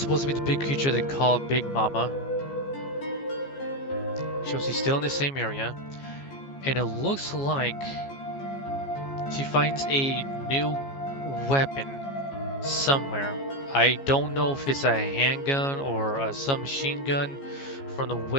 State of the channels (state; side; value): late; right; 15 ms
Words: to be the big creature they call Big Mama. She's still in the same area. And it looks like she finds a new weapon somewhere. I don't know if it's a handgun or a submachine gun from the